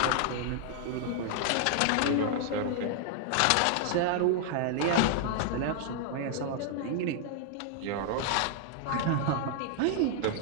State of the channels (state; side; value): different; both; correlation 0.00